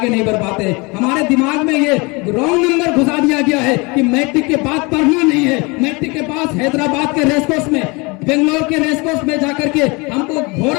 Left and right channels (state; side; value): quieter; right; 27.3 dB